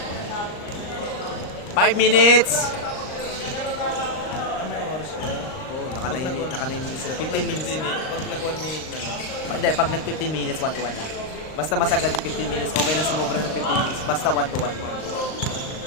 5 minutes! Oo, naka 9 minutes. 15 minutes. Pag nag-1 minute na lang. Hindi, pag nag-15 minutes, 1-1 lang. Basta masagad yung 15 minutes, okay lang sumobra ng 15 minutes. Basta 1-1.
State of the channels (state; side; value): late; right; 39 ms